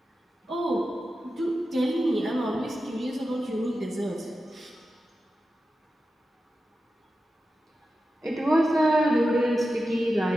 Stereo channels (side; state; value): both; normal; correlation 0.92